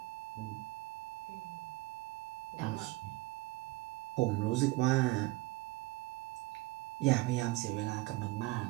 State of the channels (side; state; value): left; quieter; 20.4 dB